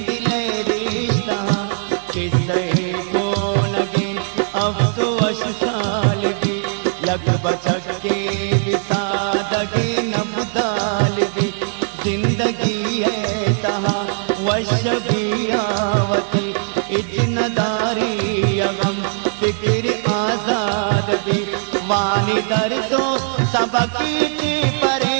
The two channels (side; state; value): left; silent; 55 dB below the other